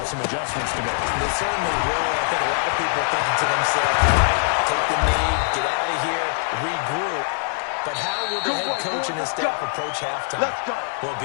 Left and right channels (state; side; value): silent; right; 64 dB below the other